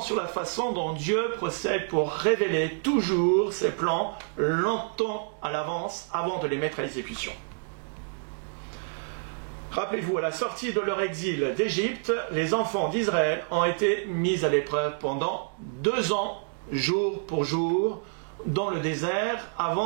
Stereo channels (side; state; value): left; silent; 59 dB below the other